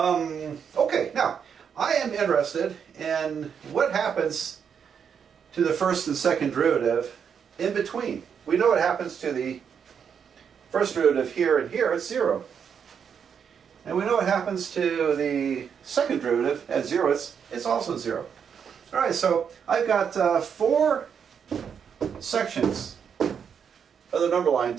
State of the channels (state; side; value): quieter; left; 7.3 dB